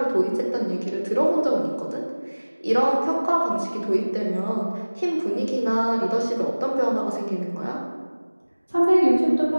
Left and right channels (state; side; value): inverted; both; correlation -1.00